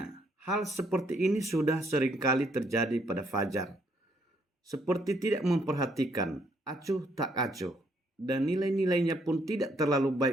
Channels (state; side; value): normal; both; correlation 0.70